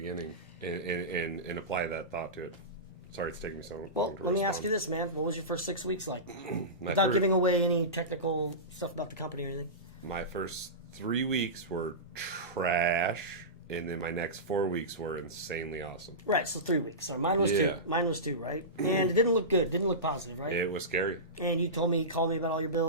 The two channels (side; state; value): both; normal; correlation -0.20